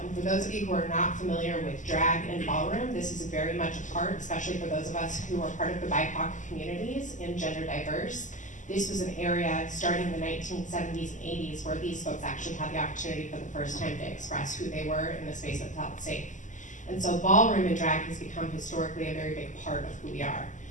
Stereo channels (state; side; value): late; right; 0.37 ms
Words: And for those of you who are not familiar with drag and ballroom, this is very much a part, especially for those of us who are part of the BIPOC communities and gender diverse. This was an area starting in the 1970s and 80s where these folks actually had the opportunity for the first time to express who they were in the space that felt safe. And so ballroom and drag has become historically a very big part of who we are.